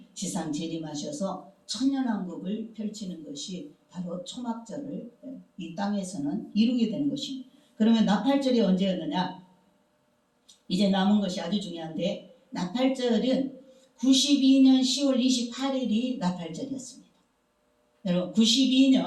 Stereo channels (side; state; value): both; identical; correlation 1.00